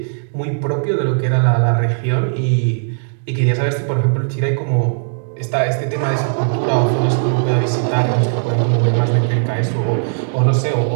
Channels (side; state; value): left; silent; digital silence